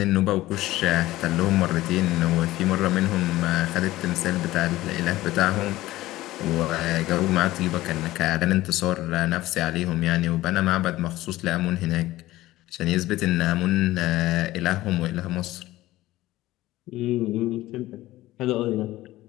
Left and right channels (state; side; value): quieter; right; 16.7 dB